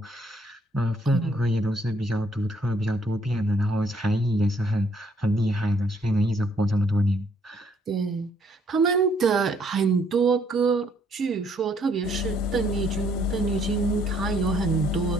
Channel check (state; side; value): normal; both; correlation 0.66